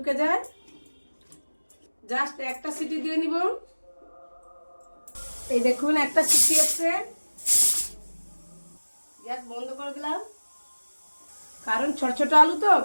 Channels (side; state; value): both; inverted; correlation -1.00